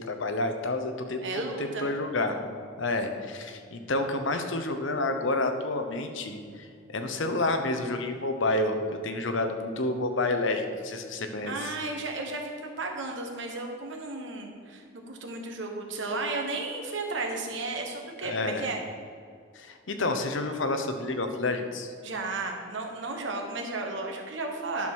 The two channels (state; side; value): normal; both; correlation -0.07